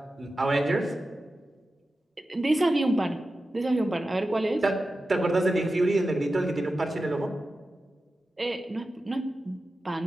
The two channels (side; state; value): both; normal; correlation 0.93